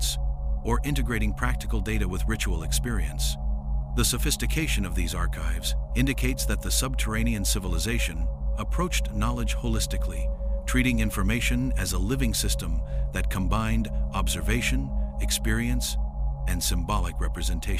or integrating practical data with ritual experience. The sophistication of these archives indicates that the subterranean civilization approached knowledge holistically, treating information as a living system that combined observation, experience, and symbolic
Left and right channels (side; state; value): both; identical; correlation 1.00